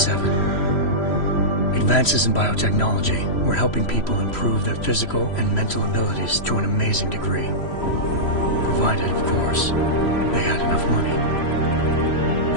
Advances in biotechnology were helping people improve their physical and mental abilities to an amazing degree. Provided, of course, they had enough money.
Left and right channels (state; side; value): late; right; 3.1 ms